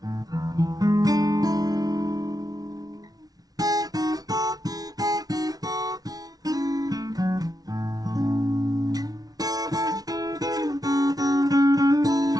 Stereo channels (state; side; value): late; left; 0.18 ms